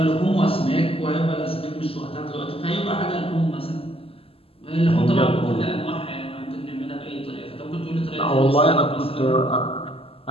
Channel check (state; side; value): late; right; 0.27 ms